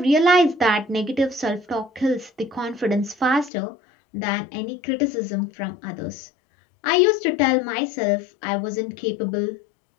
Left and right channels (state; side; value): drops out; right; at 3.5 s